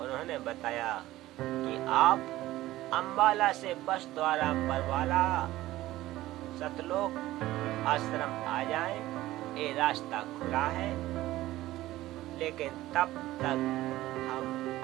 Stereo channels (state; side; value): quieter; left; 16.2 dB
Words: बताया कि आप अंबाला से बस द्वारा बरवाला सतलोक आश्रम आ जाएं, ये रास्ता खुला है। लेकिन तब तक हम